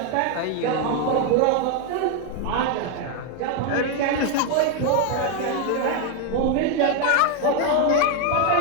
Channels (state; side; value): different; both; correlation 0.01